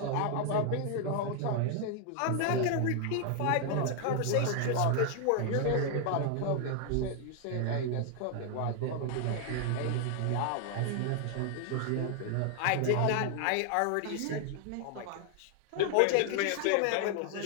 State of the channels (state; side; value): different; both; correlation 0.00